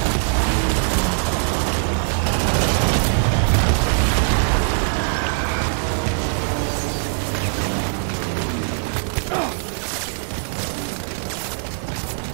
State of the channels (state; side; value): silent; left; digital silence